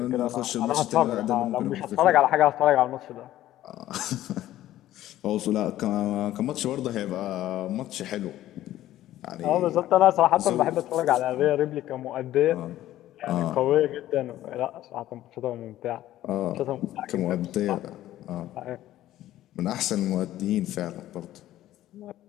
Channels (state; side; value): quieter; right; 13.9 dB